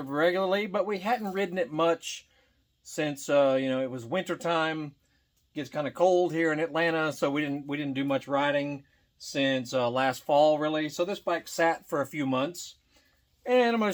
but we hadn't ridden it much since, it was wintertime. It gets kind of cold here in Atlanta, so we didn't do much riding since last fall, really. So this bike sat for a few months. And I'm going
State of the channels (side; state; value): both; identical; correlation 1.00